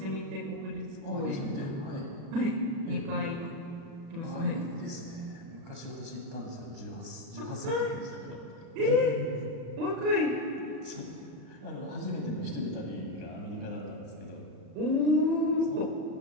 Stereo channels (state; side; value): late; left; 36 ms